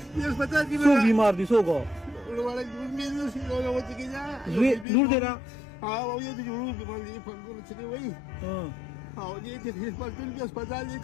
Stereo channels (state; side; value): drops out; right; at 4.9 s